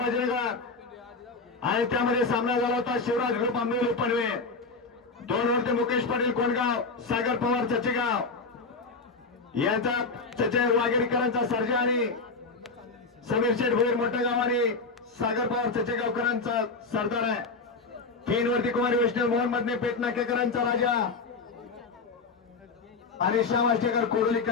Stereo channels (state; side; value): quieter; right; 4.1 dB